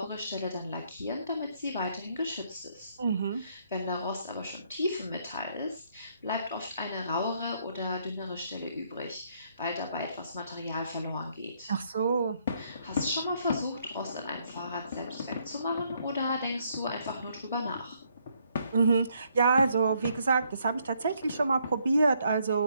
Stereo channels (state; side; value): inverted; both; correlation -0.71